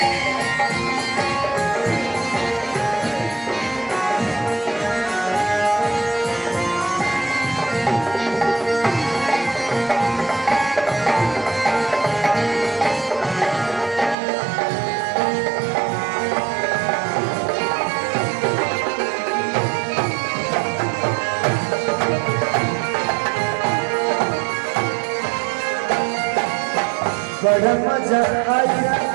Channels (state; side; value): drops out; left; at 14.2 s